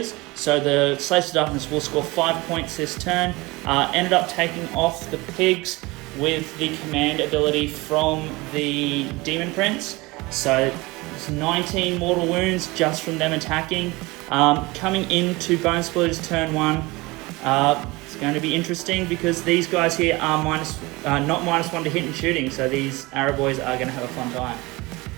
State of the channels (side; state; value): left; quieter; 22.9 dB